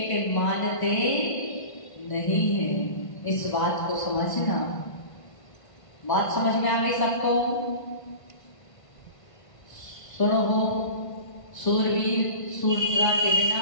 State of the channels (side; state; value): right; late; 1.5 ms